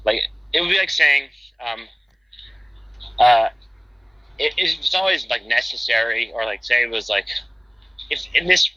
It would be like saying, it's always necessary, or say it was if in this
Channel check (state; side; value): identical; both; correlation 1.00